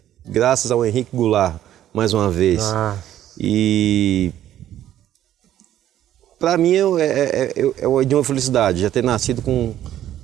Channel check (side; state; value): left; quieter; 12.0 dB